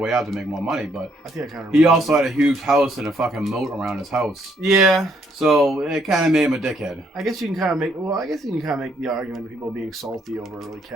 way out to make more money, but I think I kind of. He also had a huge house and a fucking moat around his house. Yeah. So it kind of made him a dickhead. I guess you can kind of make. Well, I guess you can kind of make the argument of people being salty over like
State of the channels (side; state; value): both; normal; correlation 0.70